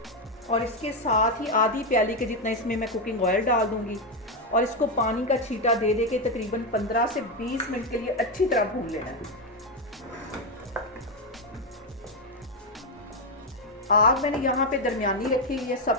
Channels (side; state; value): both; normal; correlation 0.07